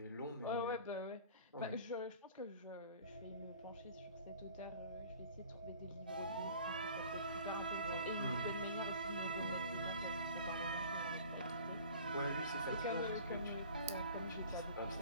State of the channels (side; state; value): both; inverted; correlation -0.45